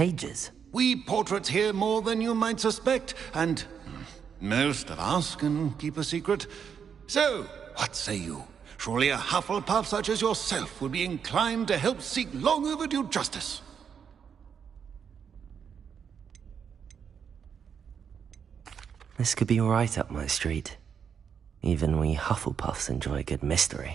We portraits hear more than you might suspect, and most of us can keep a secret. So, what say you? Surely a Hufflepuff such as yourself would be inclined to help seek long overdue justice. This could be right up my street. Even we Hufflepuffs enjoy a good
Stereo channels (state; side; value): quieter; left; 7.3 dB